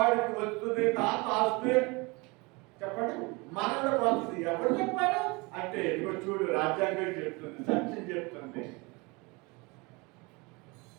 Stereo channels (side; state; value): left; quieter; 26.7 dB